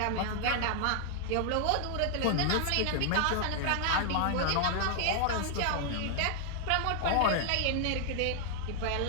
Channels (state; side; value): different; both; correlation 0.00